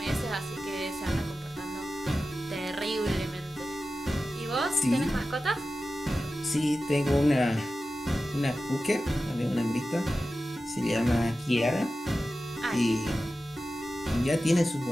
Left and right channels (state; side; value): normal; both; correlation 0.94